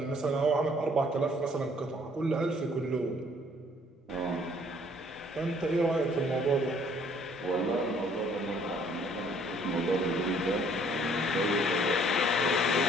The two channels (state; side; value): normal; both; correlation 0.60